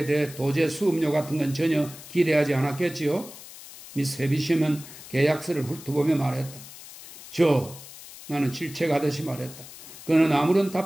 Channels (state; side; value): noise; left; hiss, 16 dB below the sound